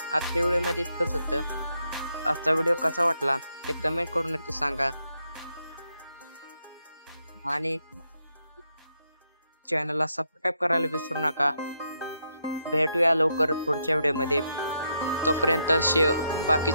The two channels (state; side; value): inverted; both; correlation -0.80